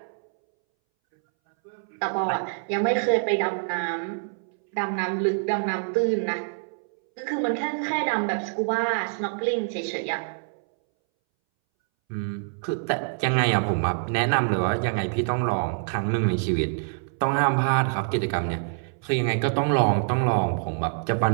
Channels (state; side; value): silent; left; 61 dB below the other